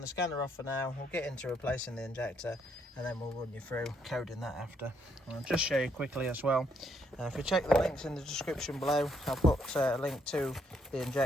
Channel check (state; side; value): normal; both; correlation 0.73